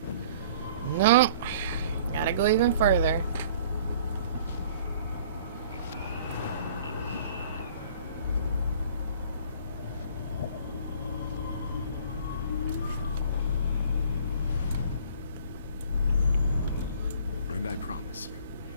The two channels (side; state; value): both; inverted; correlation -0.51